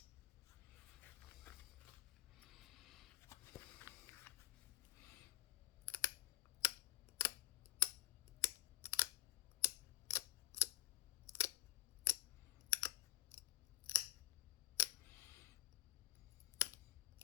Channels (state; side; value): quieter; right; 16.7 dB